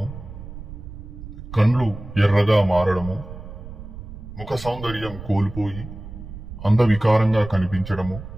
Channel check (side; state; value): right; noise; rumble, 12 dB below the sound